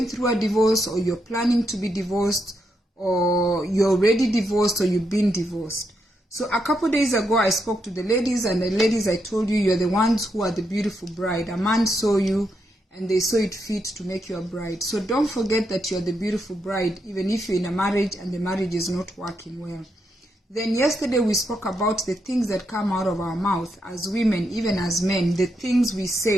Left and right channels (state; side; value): normal; both; correlation 0.81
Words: through a divorce, or you're planning to be divorced, or you're already divorced, or you've been divorced. So a couple days ago, I spoke to the ladies, and the ladies, I told you, you're the ones who are the beautiful bride. A man saw you, and they saw it fit to make you a bride. So don't forget that you're the beautiful bride, even if you're in a marriage and the marriage is not working well. Then yesterday, we spoke about the things that come out of our mouth as women, even as men, the things we